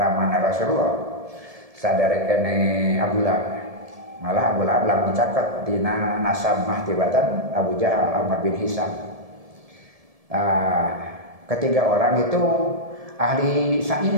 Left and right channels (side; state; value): left; late; 1.7 ms